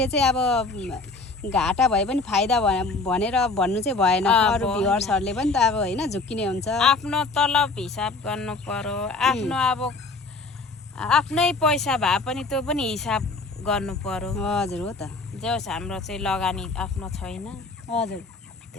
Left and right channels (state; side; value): quieter; right; 3.6 dB